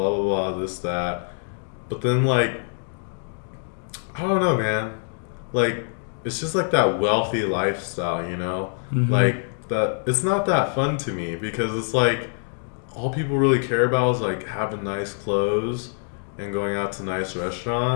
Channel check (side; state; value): right; silent; 62 dB below the other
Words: blah blah, this that. But then like, I don't know, man. Like, it's just like that wealthy lifestyle, you know? Like that. It's not that fun to me because it's like all people really care about is like having nice clothes and going out to nice